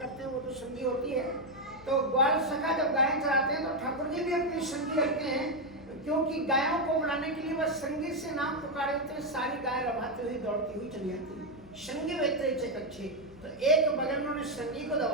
हैं वो तो संगी होती है। तो ग्वाल सखा जब गाय चराते हैं तो ठाकुर जी भी अपनी संगी रखते हैं, क्योंकि गायों को बुलाने के लिए वह संगी से नाम पुकारे होते हैं, सारी गाय रवाते हुई दौड़ती हुई चली जाती है। संगी वेत्रे च कक्षे, तो एक बगल में उन्होंने संगी को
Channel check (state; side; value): noise; left; hum, 23 dB below the sound